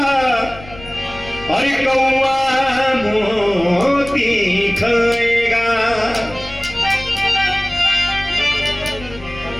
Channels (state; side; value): noise; left; rumble, 17 dB below the sound